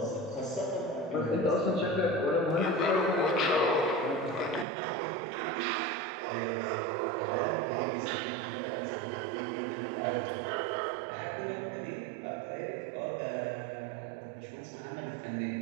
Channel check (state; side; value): drops out; left; at 4.7 s